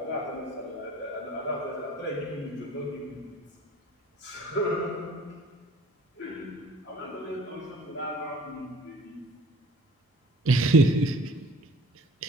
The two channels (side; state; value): both; normal; correlation 0.49